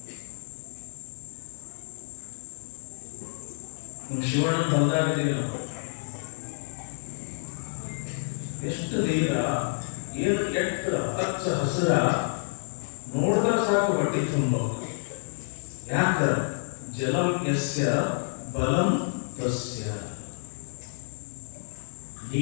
ಶಿವಣ್ಣ ಹೊಲದಾಗಿದ್ದೀವಿ ನಾವು. ಎಷ್ಟು ನೀರ, ಏನು ಕೆಟ್ಟ ಹಚ್ಚ ಹಸಿರ, ನೋಡಿದ್ರೆ ಸಾಕು ಹೊಟ್ಟೆ ತುಂಬ. ಯಾಕ? ಜಲಂ ಯಸ್ಯ ಬಲಂ ತಸ್ಯ.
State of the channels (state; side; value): silent; right; digital silence